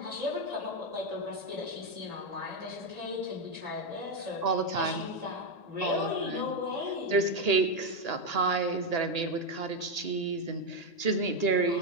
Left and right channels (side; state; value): right; late; 1.8 ms